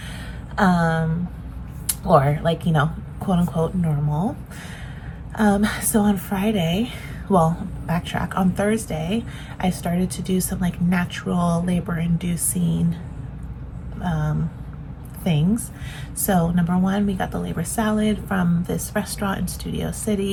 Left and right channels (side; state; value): both; identical; correlation 1.00